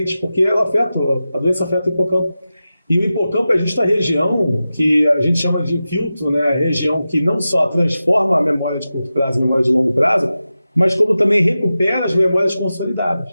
porque ela a doença afeta o hipocampo. E o hipocampo é justa a região que a gente chama de filtro, né? A região que não só transforma a memória de curto prazo em memória de longo prazo, mas como também recupera as memórias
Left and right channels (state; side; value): inverted; both; correlation -0.93